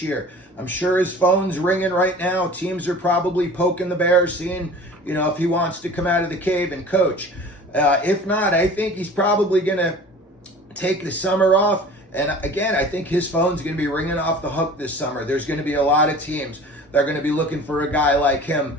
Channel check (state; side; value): normal; both; correlation 0.42